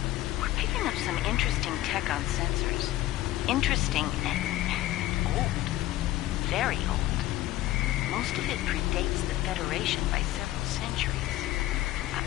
We're picking up some interesting tech on sensors. Interesting and old. Very old. Most of it predates the Federation by several centuries.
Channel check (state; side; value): quieter; right; 15.5 dB